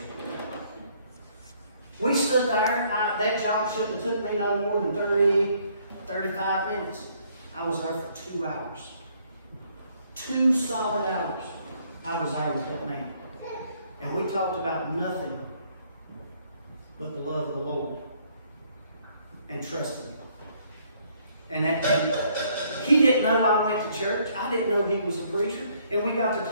We stood there. That job shouldn't have took me no more than 30, 35 minutes. I was there for 2 hours. 2 solid hours I was there with that man. And we talked about nothing but the love of the Lord and trusting Him. And he didn't know I went to church. I didn't know he was a preacher. And we got to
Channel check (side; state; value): both; inverted; correlation -0.66